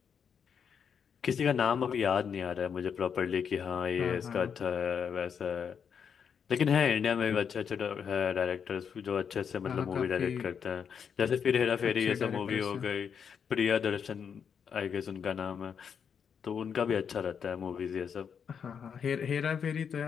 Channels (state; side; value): quieter; right; 7.1 dB